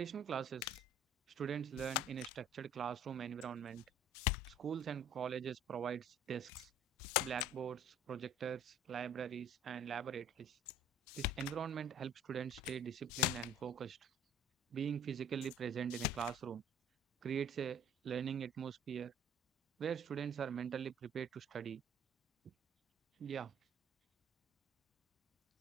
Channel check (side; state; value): both; normal; correlation 0.51